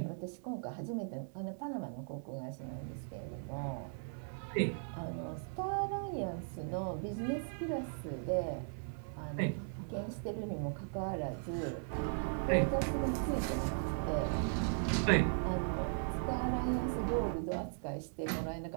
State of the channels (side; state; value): left; silent; 53 dB below the other